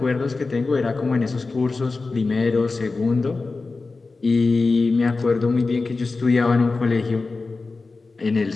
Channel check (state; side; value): quieter; right; 3.9 dB